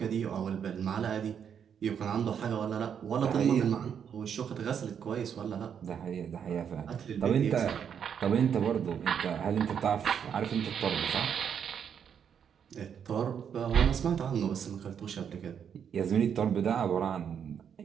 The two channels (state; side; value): quieter; left; 7.9 dB